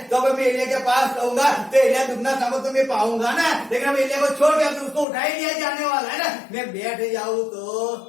तो अब मैं एलिया के पास रहूंगा, तो एलिया दुगना समय तो मैं पाऊंगा ना। लेकिन अब एलिया को छोड़ के उसको उठा ही लिया जाने वाला है ना। मैं बैठ जाऊं तो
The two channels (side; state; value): right; drops out; at 5.1 s